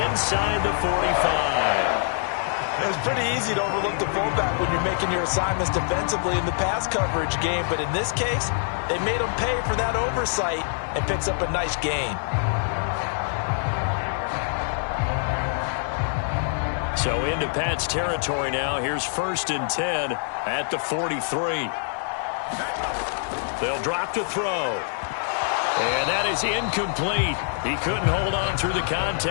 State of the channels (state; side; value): silent; right; digital silence